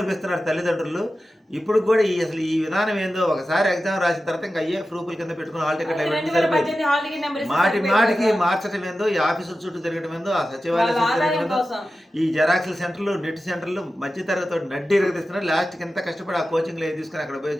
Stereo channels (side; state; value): both; normal; correlation 0.93